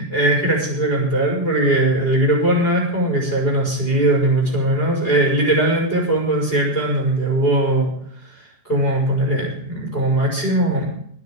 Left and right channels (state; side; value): late; right; 4.7 ms